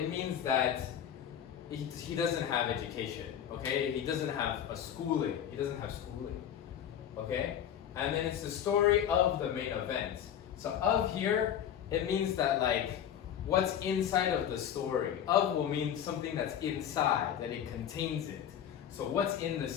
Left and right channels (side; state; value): right; quieter; 9.6 dB